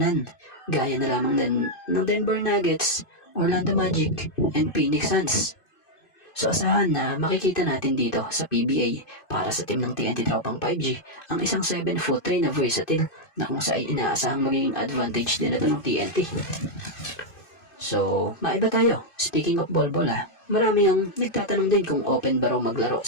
gaya na lamang ng Denver Nuggets, Orlando Magic, and Phoenix Suns. So asahan na makikita natin dito sa PBA para sa team ng TNT Tropang 5G ang isang 7'3" na versatile na kung saan inaasahang magiging advantage din ito ng TNT. So, maiba tayo. Speaking of Bolbol marami ang nagtatanong din kung open ba raw maglaro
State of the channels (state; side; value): late; right; 2.5 ms